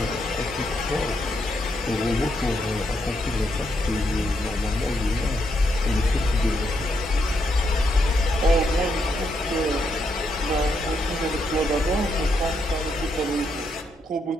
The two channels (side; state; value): both; normal; correlation 0.79